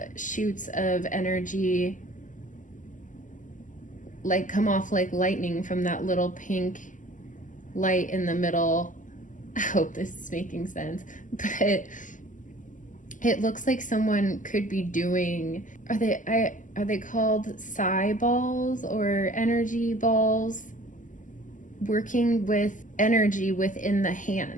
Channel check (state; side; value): late; right; 0.37 ms